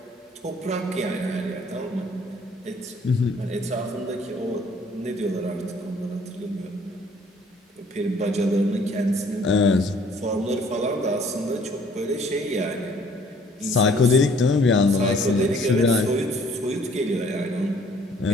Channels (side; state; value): both; normal; correlation 0.58